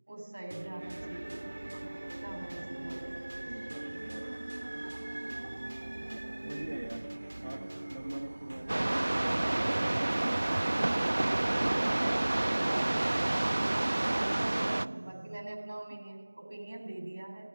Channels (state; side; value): inverted; both; correlation -1.00